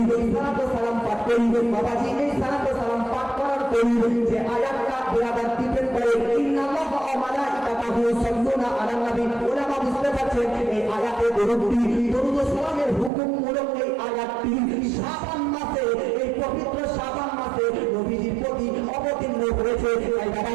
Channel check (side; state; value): left; drops out; at 13.1 s